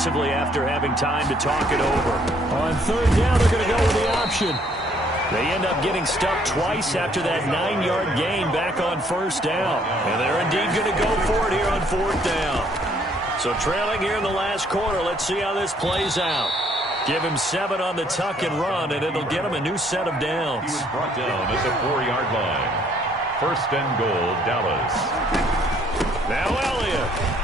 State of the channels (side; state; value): both; normal; correlation 0.64